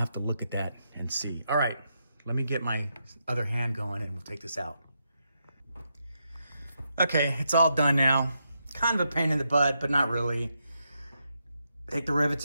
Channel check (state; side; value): inverted; both; correlation -0.82